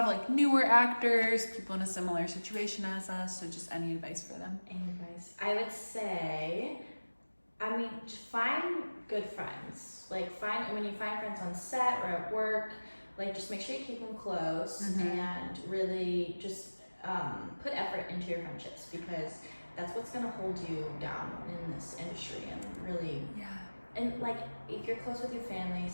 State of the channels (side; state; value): both; inverted; correlation -1.00